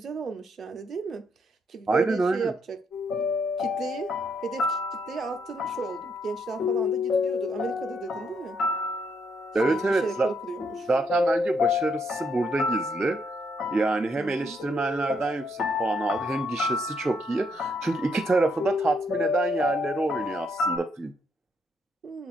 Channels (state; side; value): normal; both; correlation 0.74